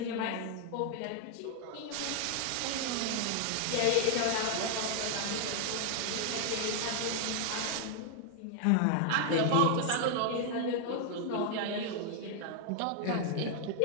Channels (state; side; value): different; both; correlation 0.00